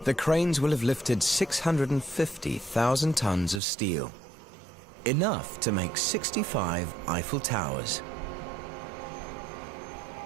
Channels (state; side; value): drops out; left; at 3.6 s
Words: the cranes will have lifted 650,000 tons of steel, enough to make 65 Eiffel Towers.